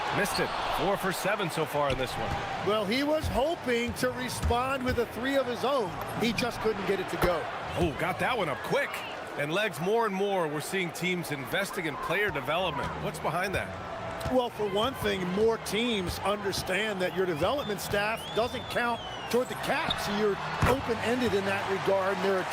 Missed it. 4 for 7 so far in this one. Well, he was hoping to respond with a three of his own. He just couldn't get it to go. Oh, got that one up quick. And legs, more and more, we're seeing teams investing in player development. What's behind that? Well, for one thing, more teams understand that your development staff doesn't count toward the cap, so you're open-ended in that regard. And there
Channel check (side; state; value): both; identical; correlation 1.00